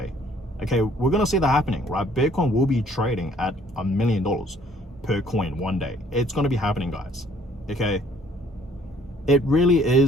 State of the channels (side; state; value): both; normal; correlation 0.60